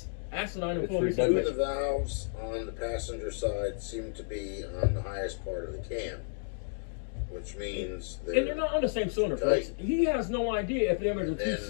asinine and full of Two of the valves on the passenger side seem to be on the highest part of the cam, which means they're not on the same cylinder, folks. He has no idea if them are the 2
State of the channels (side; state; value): right; silent; digital silence